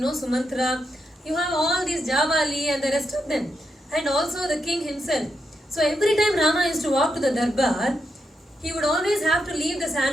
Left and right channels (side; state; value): both; normal; correlation 0.84